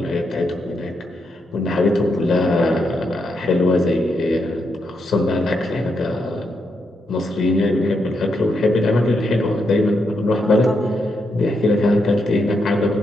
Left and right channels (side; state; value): both; normal; correlation 0.81